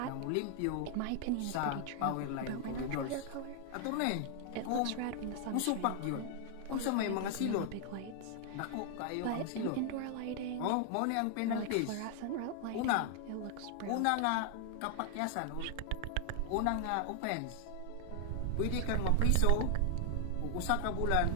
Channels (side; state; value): both; different; correlation 0.00